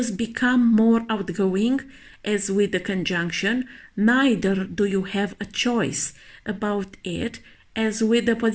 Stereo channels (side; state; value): both; identical; correlation 1.00